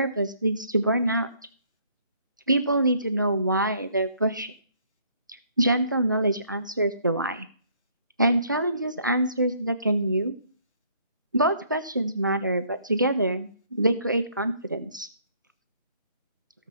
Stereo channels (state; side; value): inverted; both; correlation -0.64